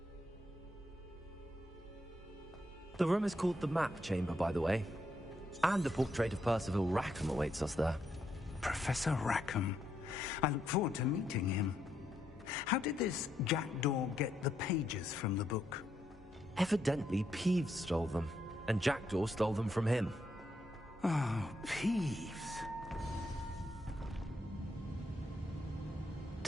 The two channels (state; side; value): normal; both; correlation 0.78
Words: The room is called the Map Chamber, by the way. And a portrait of Percival Rackham awaits us there. Professor Rackham. I look forward to meeting him. How did this jackdaw get the pages from the book? Evidently, Peeves stole them, and Jackdaw stole them from him. Oh, Peeves.